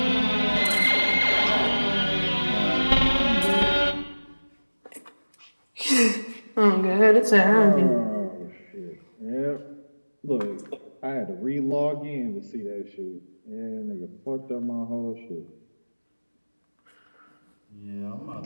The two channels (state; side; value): inverted; both; correlation -1.00